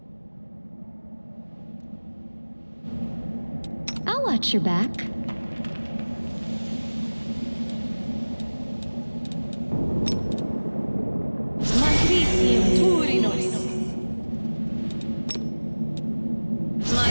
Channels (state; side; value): inverted; both; correlation -1.00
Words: I'll watch your back.